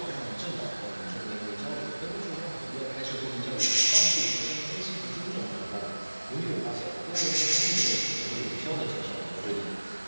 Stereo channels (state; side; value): inverted; both; correlation -1.00